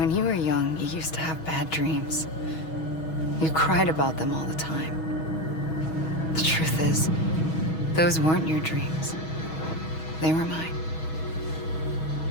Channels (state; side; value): late; right; 6.3 ms